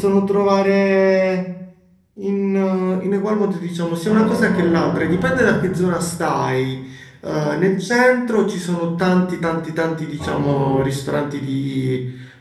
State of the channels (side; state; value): both; identical; correlation 1.00